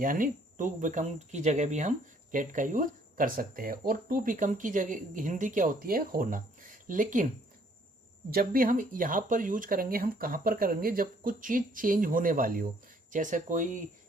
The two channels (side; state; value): both; normal; correlation 0.63